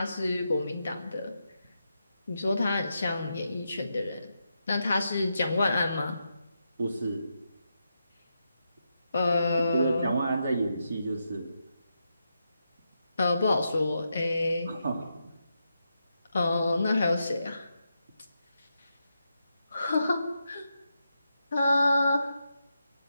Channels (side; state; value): both; inverted; correlation -0.85